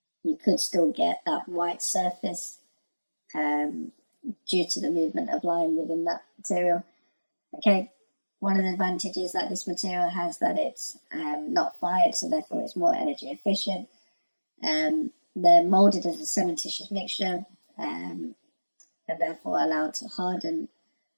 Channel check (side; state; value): both; inverted; correlation -1.00